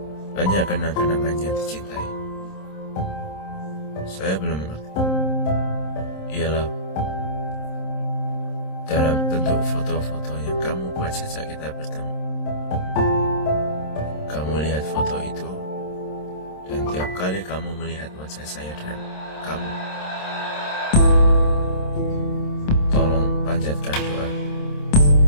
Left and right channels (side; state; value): right; late; 27 ms